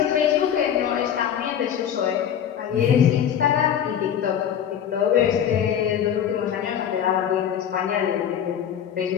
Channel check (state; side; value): quieter; right; 9.1 dB